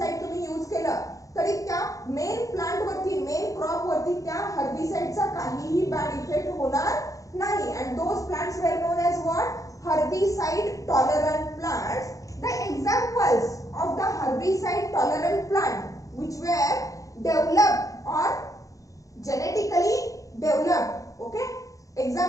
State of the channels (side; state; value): right; late; 0.16 ms